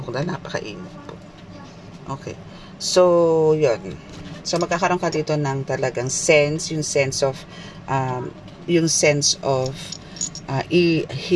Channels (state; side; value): identical; both; correlation 1.00